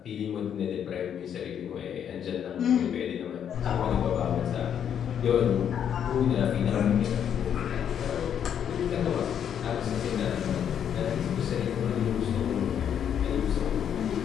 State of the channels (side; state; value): right; quieter; 8.8 dB